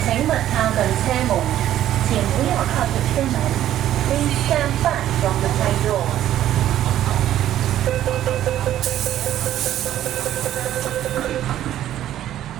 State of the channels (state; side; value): quieter; left; 12.2 dB